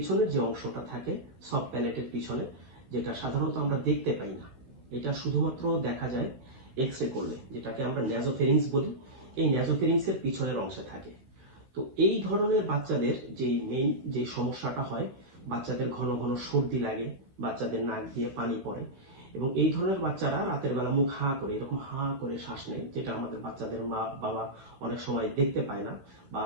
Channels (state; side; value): late; left; 15 ms